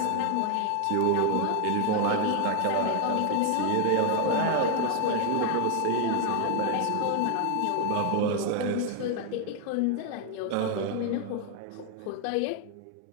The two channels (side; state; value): both; different; correlation 0.00